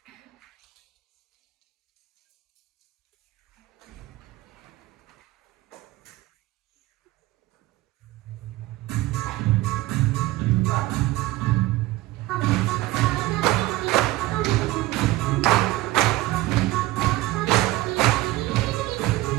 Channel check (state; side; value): quieter; left; 17.8 dB